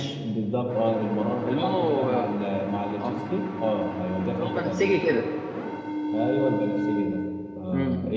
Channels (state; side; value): identical; both; correlation 1.00